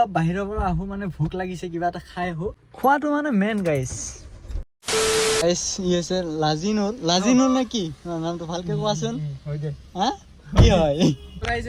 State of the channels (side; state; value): both; identical; correlation 1.00